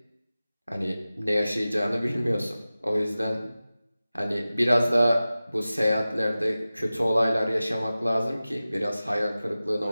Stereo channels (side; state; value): both; inverted; correlation -0.96